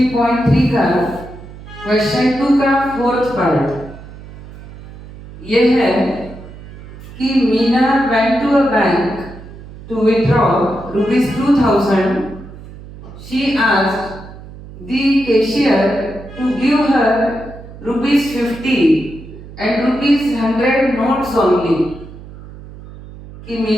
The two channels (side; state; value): right; noise; hum, 16 dB below the sound